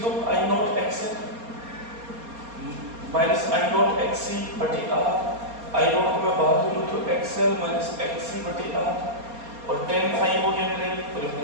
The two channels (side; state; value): left; late; 4.3 ms